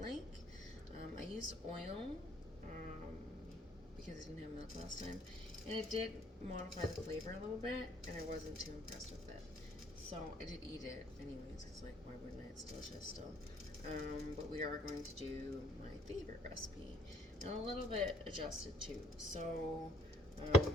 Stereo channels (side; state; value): both; normal; correlation 0.62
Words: like. I used oil, because I didn't have milk last time, and it did modify the flavor a little bit, and I wasn't too impressed with it. So I did eat it anyways, because like, why wouldn't I? It's delicious still. But we are going to do my favorite recipe, and a little bit adjusted too. So I